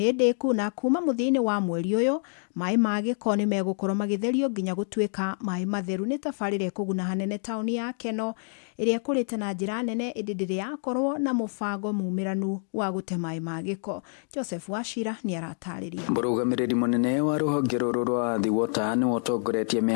ndĩku na kuma mũthia-inĩ wa mweri ũyũ maĩ ma gĩko nĩ megũkorwo magĩtherio nginya gũtuĩka maĩ matheru. Nĩ tabarĩra ĩkũguna hanene taũni ya Keno ĩrĩa kũrĩte na njĩra nene ĩndĩ ndĩrĩ yakorwo na mũbango mumĩranu wa gũte maĩ ma gĩko. Joseph Wachira nĩ aratarĩria. Mũrũgamĩrĩri mũnene wa rũhonge rũrũ rwa Athi Water nĩ ũtongoretie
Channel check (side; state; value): right; silent; 60 dB below the other